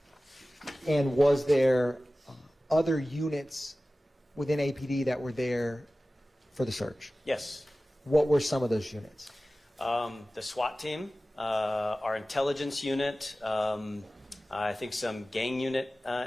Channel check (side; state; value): both; normal; correlation 0.96